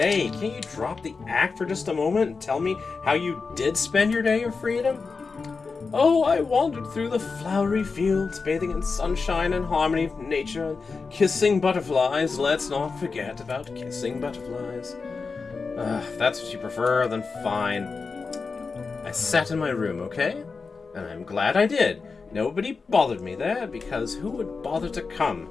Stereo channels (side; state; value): right; quieter; 4.6 dB